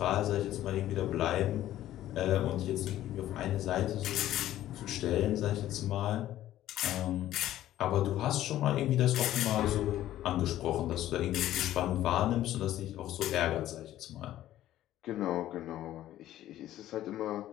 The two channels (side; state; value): right; quieter; 13.4 dB